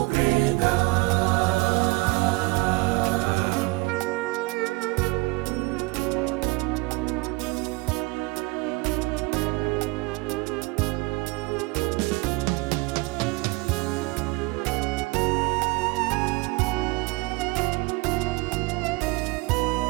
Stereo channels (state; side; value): quieter; left; 24.0 dB